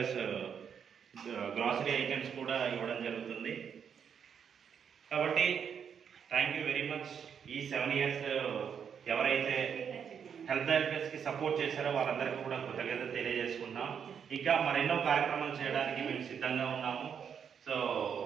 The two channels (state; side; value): quieter; left; 7.5 dB